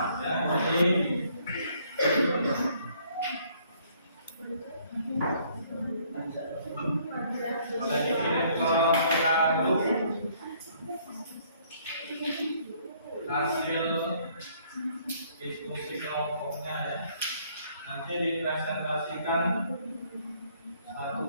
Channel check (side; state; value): both; inverted; correlation -0.64